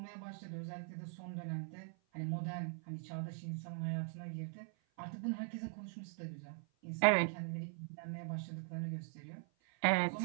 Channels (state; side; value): silent; left; 50 dB below the other